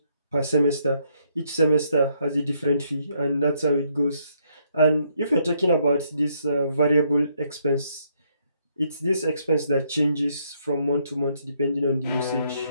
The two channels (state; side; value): inverted; both; correlation -0.72